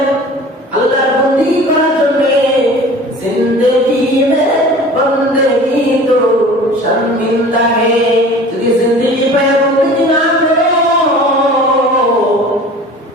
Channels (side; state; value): both; normal; correlation 0.42